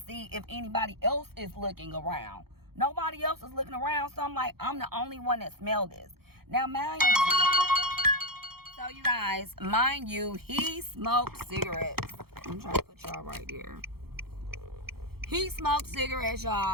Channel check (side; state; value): left; late; 0.95 ms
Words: if anybody else is looking around. Nobody else is looking around. So I'm like, I'm the only one that smelled this. Now, mind you, so you guys, mind you, he smoked cigarettes. I'm trying to put y'all right there. He smoked cigarettes,